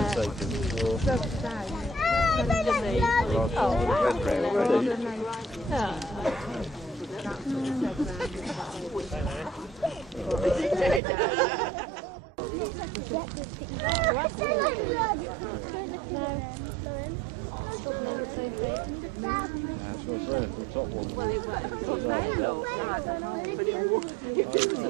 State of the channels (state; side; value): drops out; left; at 11.0 s